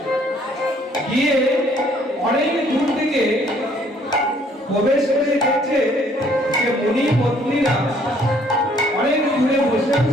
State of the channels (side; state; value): both; normal; correlation 0.62